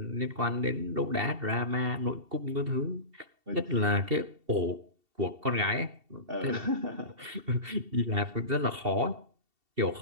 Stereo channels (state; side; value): late; left; 2.7 ms